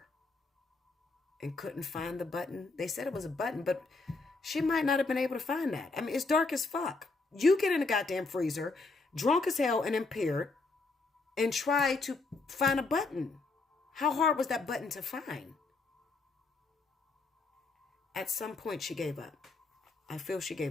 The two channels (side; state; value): right; quieter; 3.7 dB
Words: and couldn't find the button? They said it was a button, but she might not have been able to find that. I mean, it's dark as fuck. You get in the goddamn freezer, drunk as hell and impaired, and try to find a button. How hard was that button to find? At some point, she gave up. I feel she